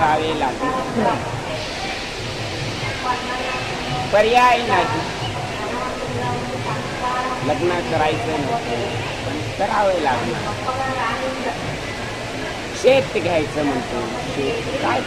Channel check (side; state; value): both; identical; correlation 1.00